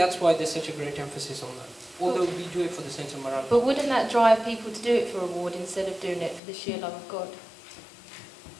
why there's such a great emphasis on that. Although we do it for the sense of morality. But wouldn't that drive people to do it for reward instead of doing it for the sheer love of God?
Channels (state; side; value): drops out; right; at 6.4 s